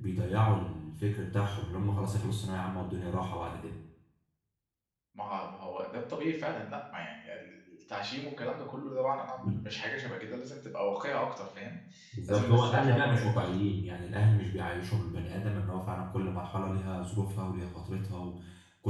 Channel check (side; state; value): both; identical; correlation 1.00